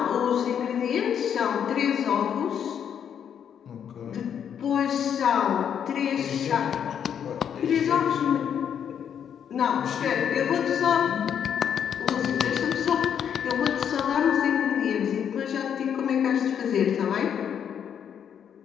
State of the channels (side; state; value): right; quieter; 8.4 dB